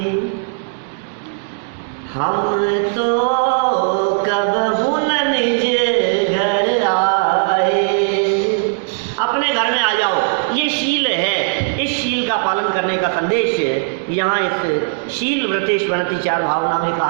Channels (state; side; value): silent; left; digital silence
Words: हम तो कबहू न निज घर आए। अपने घर में आ जाओ, ये शील है। इस शील का पालन करने का संदेश यहाँ इस शील व्रतेश्वरति 4 भावना में